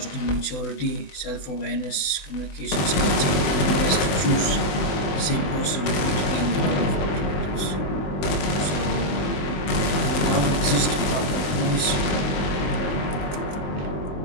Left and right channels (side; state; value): right; late; 20 ms